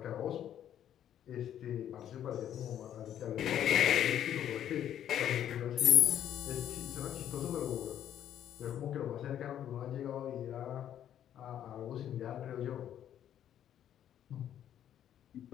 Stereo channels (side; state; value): right; quieter; 10.4 dB